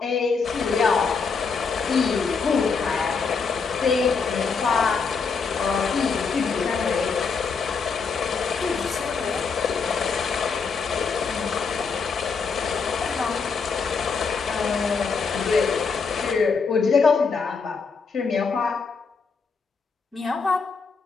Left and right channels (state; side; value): quieter; right; 5.2 dB